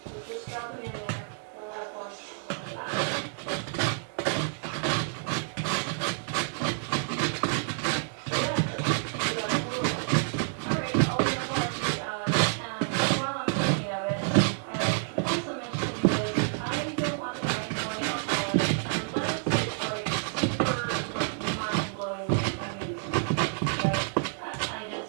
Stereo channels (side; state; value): left; silent; 58 dB below the other